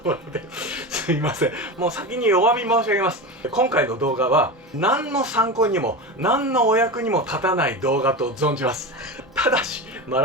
ろですいません、もう先にお詫び申し上げます。今回の動画は何の参考にも何のお役にも立たない動画と存じます。ただしマ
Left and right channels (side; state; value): both; normal; correlation 0.23